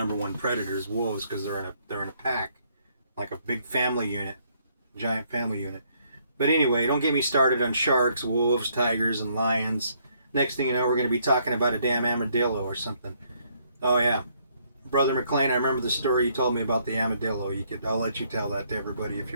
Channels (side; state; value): both; inverted; correlation -0.69